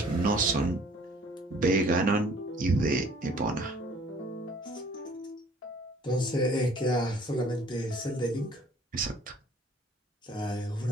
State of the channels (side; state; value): both; normal; correlation 0.54